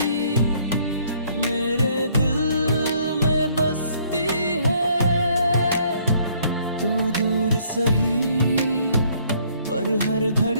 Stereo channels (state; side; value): inverted; both; correlation -0.64